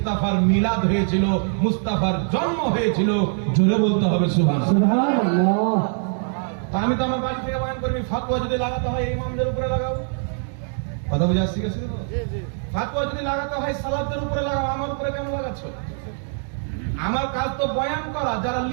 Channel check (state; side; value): silent; left; 57 dB below the other